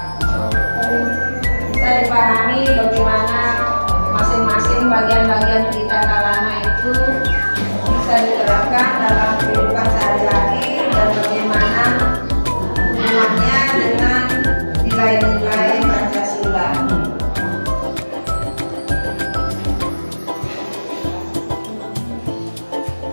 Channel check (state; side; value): inverted; both; correlation -1.00